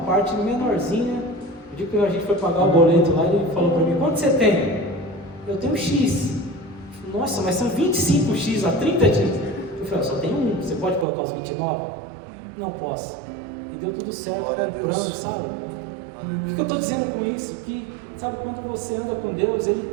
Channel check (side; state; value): left; drops out; at 11.1 s